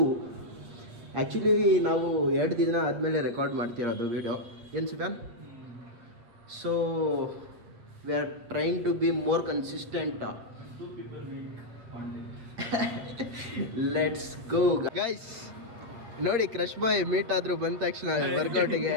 Actually ನಾವು 2 ದಿನ ಆದಮೇಲೆ record ಮಾಡ್ತಿರೋದು ವೀಡಿಯೋ. ಏನು ಸಿದನ್? So we are trying to be more consistent. Let's go guys. ನೋಡಿ, ಕ್ರಶ್ ಬಾಯ್ ಮೀಟ್ ಆದರೂ ಬಂದ ತಕ್ಷಣ ವರ್ಕೌಟಿಗೆ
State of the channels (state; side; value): late; left; 8.3 ms